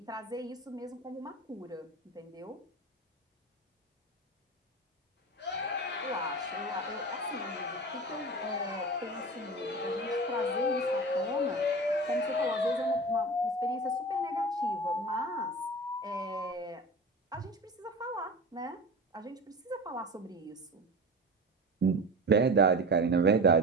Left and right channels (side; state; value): both; normal; correlation 0.31